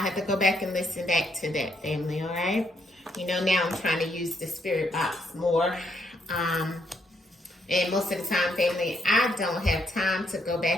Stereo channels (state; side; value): normal; both; correlation 0.74